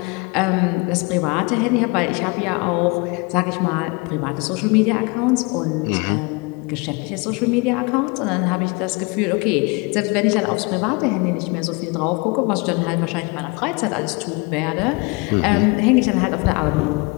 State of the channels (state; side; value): quieter; right; 28.2 dB